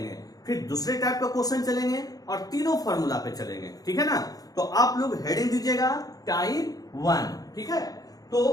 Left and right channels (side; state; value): right; late; 0.18 ms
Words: फिर दूसरे टाइप का क्वेश्चन चलेंगे और तीनों फॉर्मूला पे चलेंगे। ठीक है ना, तो आप लोग हेडिंग दीजिएगा टाइप 1। ठीक है,